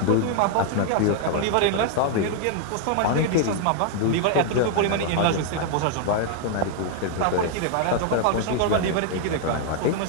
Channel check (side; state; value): both; different; correlation 0.00